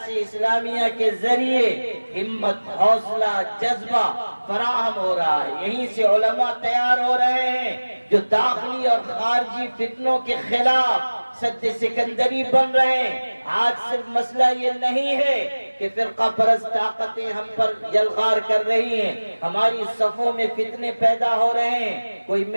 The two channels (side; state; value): both; inverted; correlation -1.00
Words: اسلامیہ کے ذریعے ہمت، حوصلہ، جذبہ فراہم ہو رہا ہے۔ یہیں سے علماء تیار ہو رہے ہیں جو داخلی اور خارجی فتنوں کے خلاف سد سکندری بن رہے ہیں۔ آج صرف مسئلہ یہ نہیں ہے کہ فرقہ پرست طاقتیں ہم پر یلغار کر رہی ہیں، ہماری صفوں میں فتنے پیدا ہو رہے ہیں، کوئی